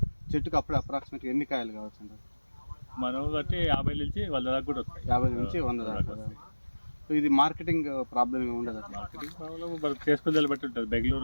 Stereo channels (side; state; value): both; inverted; correlation -1.00